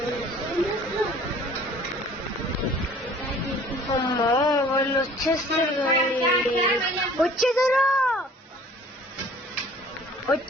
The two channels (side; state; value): both; normal; correlation 0.51